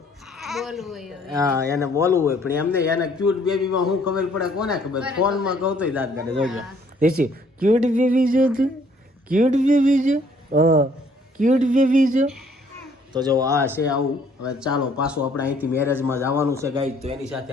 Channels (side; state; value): both; normal; correlation 0.62